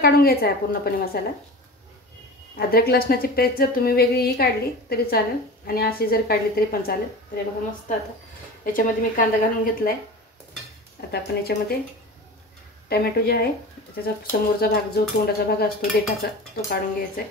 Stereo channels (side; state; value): both; normal; correlation 0.33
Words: घ्यायचा आहे पूर्णपणे मसाला. अद्रक लसणाची पेस्ट जर तुम्ही वेगळीही काढली तरी चालेल आणि अशी जर काढली तरी पण चालेल. तरी बघा मस्त. आता याच्यामध्ये मी कांदा घालून घेतला आहे. आता आपण याच्यामध्ये टमॅटो जे आहे त्याचा समोरचा भाग जो तोंडाचा भाग असतो देठाचा तो काढून घ्यायचा आहे.